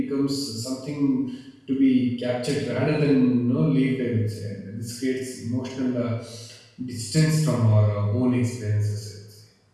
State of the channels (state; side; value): identical; both; correlation 1.00